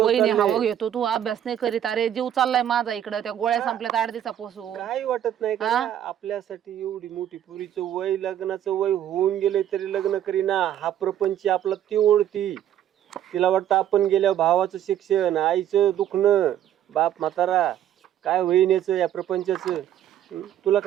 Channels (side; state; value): left; quieter; 10.9 dB